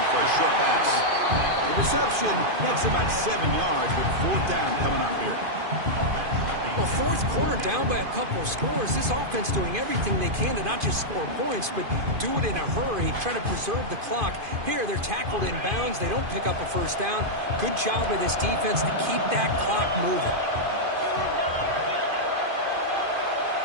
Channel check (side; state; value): left; late; 2.5 ms